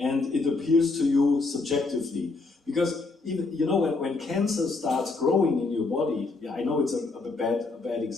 it appears to you subjectively. Because even, you know, when cancer starts growing in your body, yeah, I know it's a bad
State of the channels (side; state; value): right; quieter; 3.7 dB